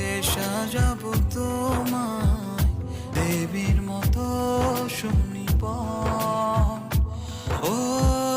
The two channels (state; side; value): identical; both; correlation 1.00